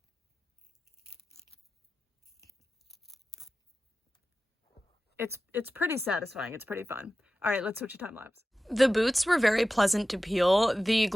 It's pretty satisfying. It's pretty fun. All right, let's switch to time lapse. The boots were very pleasant to peel. The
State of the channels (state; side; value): normal; both; correlation 0.95